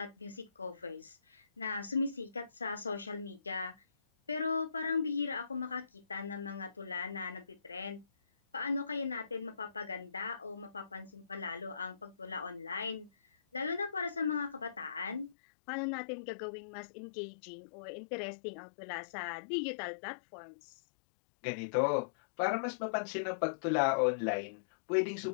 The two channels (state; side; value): drops out; right; at 15.4 s